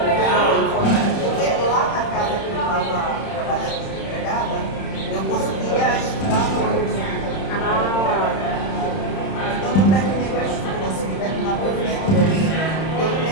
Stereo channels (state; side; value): late; right; 31 ms